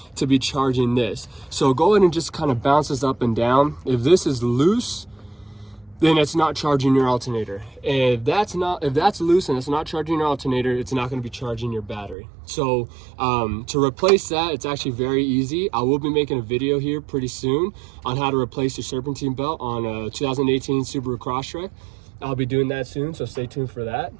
to be charging this. So go ahead and just kind of bounce this up and down. If this is loose, then it's not charging your alternator. If that's loose and it's not charging your alternator, it's not going to be charging your battery. So to replace that, it's actually very easy. I will be making a video here pretty soon on how to replace your serpentine belt on a 2018 Subaru Crosstrek. I'll be doing that soon, so stay tuned for that.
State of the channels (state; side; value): drops out; left; at 12.2 s